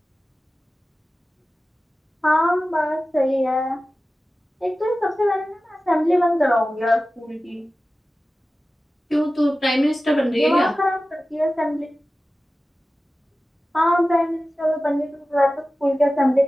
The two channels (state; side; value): normal; both; correlation 0.96